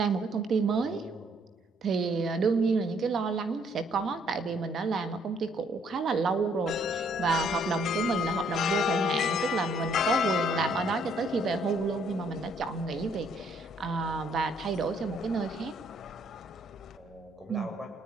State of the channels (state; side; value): normal; both; correlation 0.67